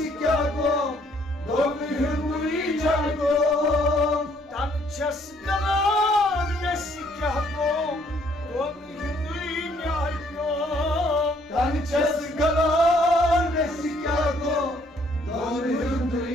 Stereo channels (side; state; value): both; normal; correlation 0.65